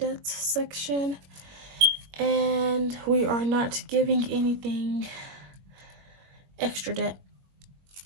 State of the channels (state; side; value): late; left; 21 ms